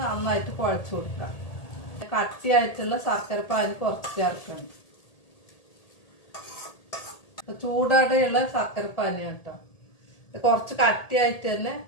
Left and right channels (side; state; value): right; late; 1.8 ms